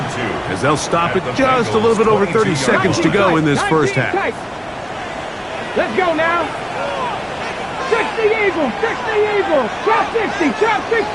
as they'll stop it just a little bit over 30 seconds to go in this first half. Let's go now. 60 Eagles, 60 Eagles. Chop 60, chop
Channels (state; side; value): identical; both; correlation 1.00